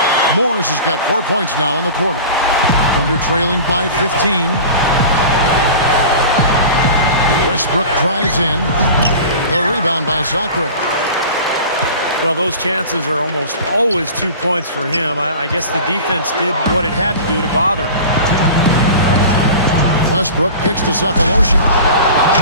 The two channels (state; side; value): inverted; both; correlation -0.37